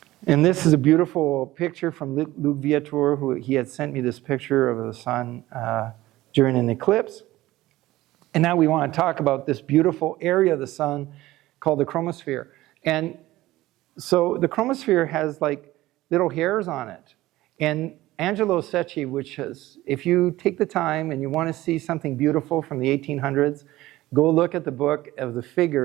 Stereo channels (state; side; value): quieter; left; 17.0 dB